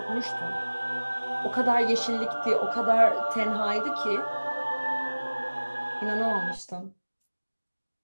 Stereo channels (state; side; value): inverted; both; correlation -1.00